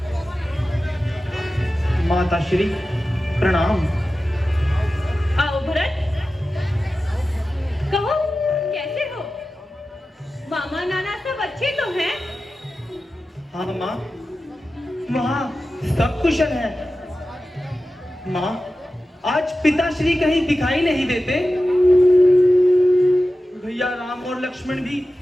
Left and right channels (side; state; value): both; normal; correlation 0.94